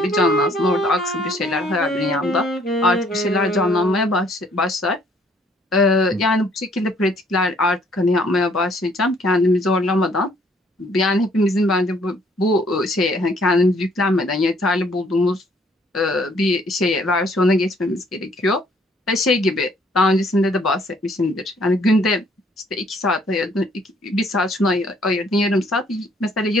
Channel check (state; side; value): normal; both; correlation 0.63